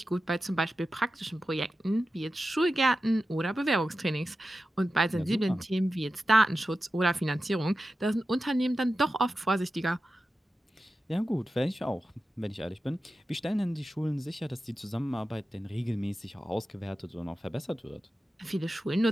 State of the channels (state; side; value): normal; both; correlation 0.93